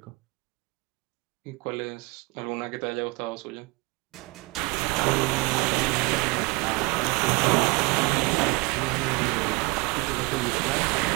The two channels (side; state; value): left; quieter; 25.6 dB